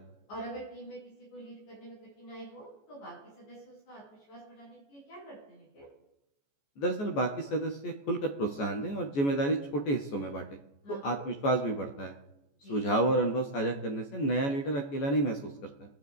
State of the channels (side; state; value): right; late; 14 ms